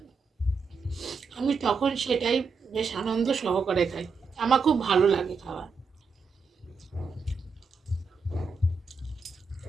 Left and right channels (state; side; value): quieter; left; 4.8 dB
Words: আমি তখন সেটাই বেশ আনন্দ সহকারে খাই, আমার খুব ভালো লাগে খাওয়া।